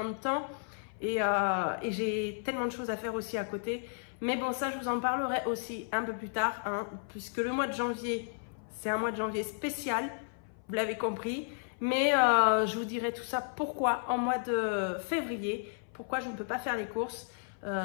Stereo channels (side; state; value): right; silent; 56 dB below the other